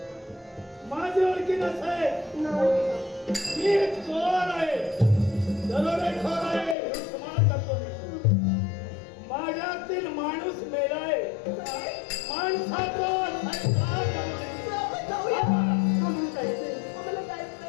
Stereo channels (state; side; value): drops out; right; at 6.8 s